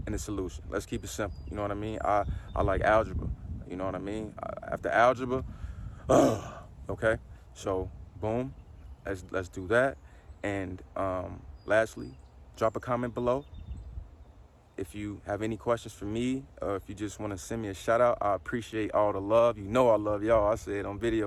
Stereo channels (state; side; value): identical; both; correlation 1.00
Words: and the solution. Let's keep it simple. You know what I mean? I like algebra. You know what I mean? After algebra, okay? So, boom, let's do that. And lastly, drop a comment below. If you have any questions for me, or if you just want to send me a shout out, I appreciate all the love. You know I love y'all. I say it on